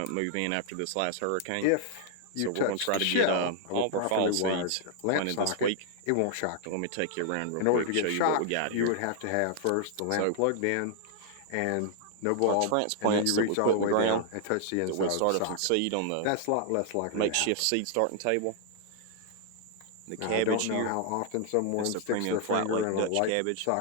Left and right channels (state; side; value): different; both; correlation 0.00